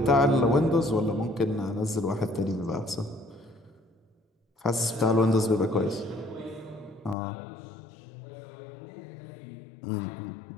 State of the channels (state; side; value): drops out; right; at 7.2 s